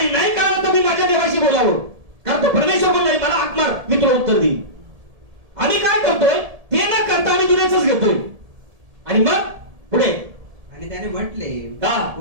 नाही कळलं तर मी माझ्या देवाशी बोलावं. कारण तो परमेश्वर बोललाय मला हाक मार, मी तुला उत्तर देईन. आम्ही काय करतोय? ते न करता आम्ही दुनियाच घेतोय. आणि मग पुढे आणि त्याने म्हटले हा.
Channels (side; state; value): left; late; 1.7 ms